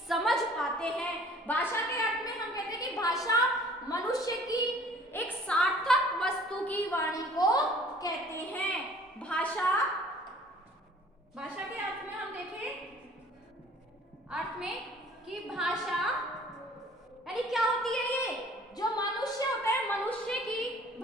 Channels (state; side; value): normal; both; correlation 0.52